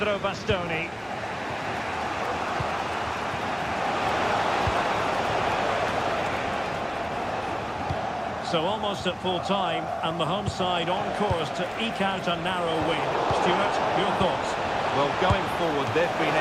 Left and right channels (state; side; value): identical; both; correlation 1.00